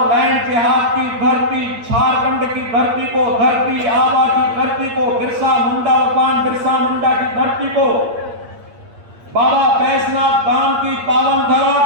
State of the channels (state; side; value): late; left; 8.6 ms